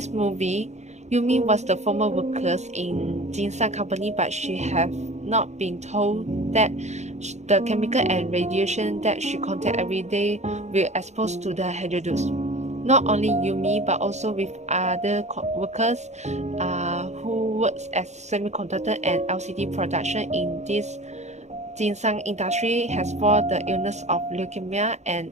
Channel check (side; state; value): left; late; 0.33 ms